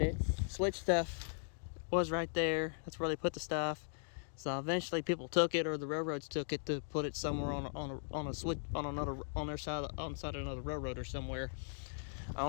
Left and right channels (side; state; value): right; silent; digital silence